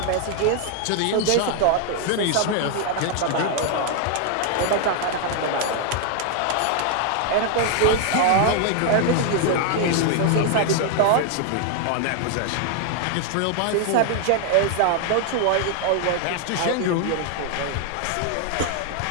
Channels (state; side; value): different; both; correlation 0.00